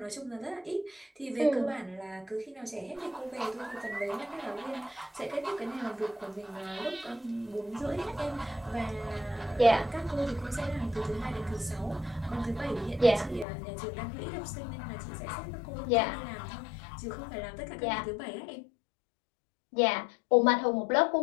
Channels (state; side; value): drops out; right; at 13.5 s